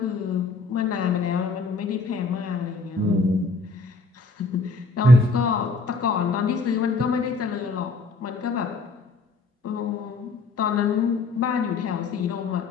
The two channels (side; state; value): right; quieter; 3.7 dB